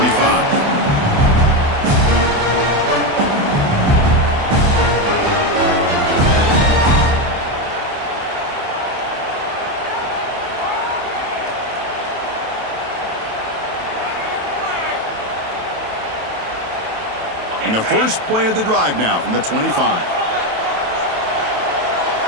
And the first play of the drive now from the 25.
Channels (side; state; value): left; late; 27 ms